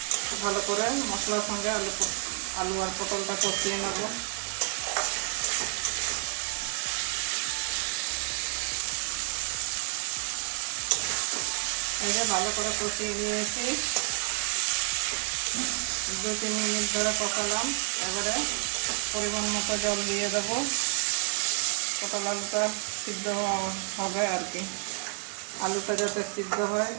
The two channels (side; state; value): left; quieter; 39.8 dB